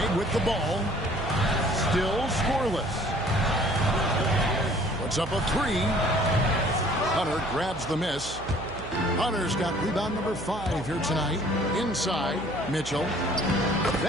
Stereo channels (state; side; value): noise; right; hum, 13 dB below the sound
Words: with the ball. Still scoreless. Puts up a 3. Hunter grabs the miss. Hunter's got rebound number 5 here tonight. Inside, Mitchell.